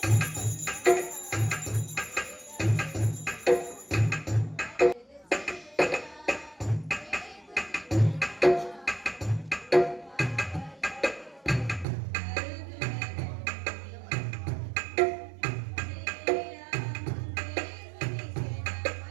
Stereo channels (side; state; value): left; drops out; at 11.9 s